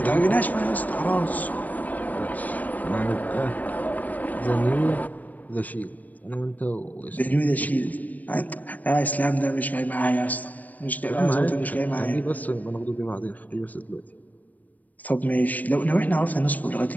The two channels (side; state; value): right; late; 0.078 ms